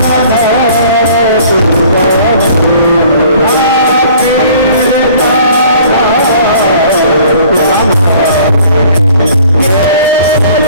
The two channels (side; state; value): both; inverted; correlation -0.53